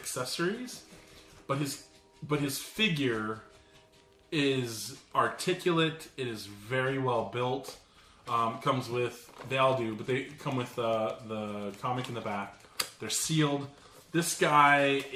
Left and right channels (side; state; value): both; identical; correlation 1.00